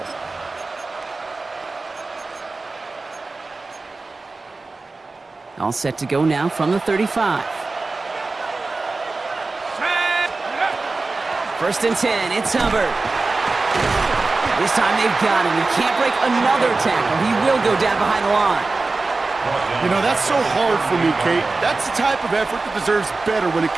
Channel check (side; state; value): left; quieter; 3.6 dB